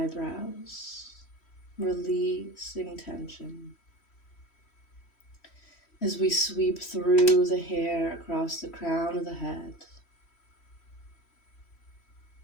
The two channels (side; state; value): right; late; 3.1 ms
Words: releasing tension. As we sweep through the hair across the crown of the head,